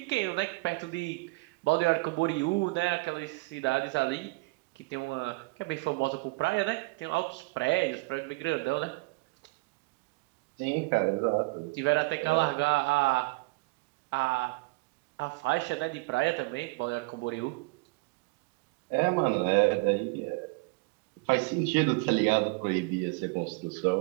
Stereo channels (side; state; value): left; quieter; 25.8 dB